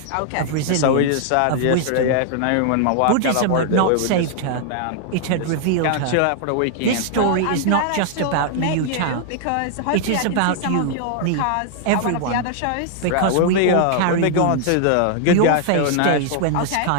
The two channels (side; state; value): both; different; correlation -0.01